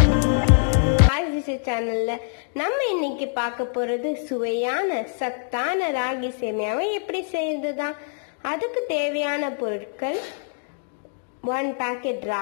சேனல்ல நம்ம இன்னைக்கு பார்க்க போறது சுவையான சத்தான ராகி சேமியாவை எப்படி செய்யறதுதான். அதுக்கு தேவையான பொருட்கள் 1 packet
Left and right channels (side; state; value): right; silent; digital silence